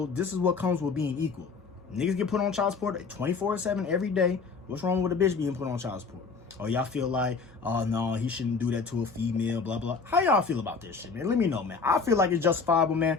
this is what comes with being equal. Niggas get put on child support 24/7 every day. What's wrong with a bitch being put on child support? Or y'all feel like, oh no, he shouldn't do that to a female, blah, blah. How y'all feel about this shit, man? Let me know, man. I feel like it's justifiable, man.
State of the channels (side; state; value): right; quieter; 4.8 dB